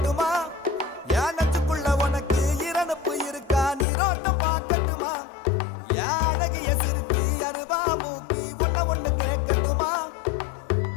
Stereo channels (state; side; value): drops out; right; at 3.9 s